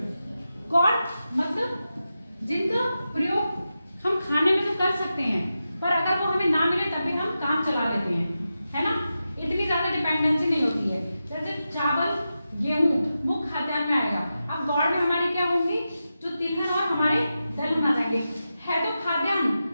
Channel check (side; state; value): both; inverted; correlation -0.90